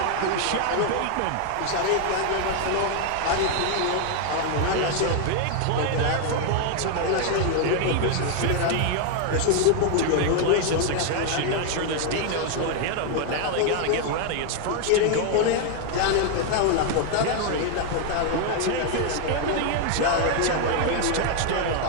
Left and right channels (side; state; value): both; different; correlation 0.00